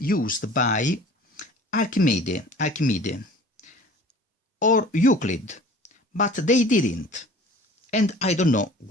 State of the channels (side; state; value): both; normal; correlation 0.45